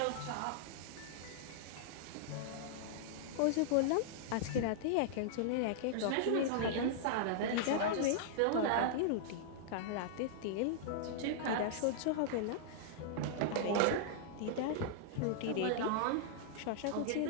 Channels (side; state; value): both; different; correlation -0.01